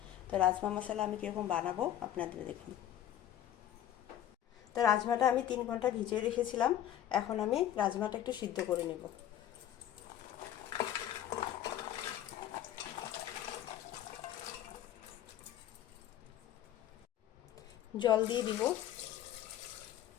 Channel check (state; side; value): quieter; right; 11.5 dB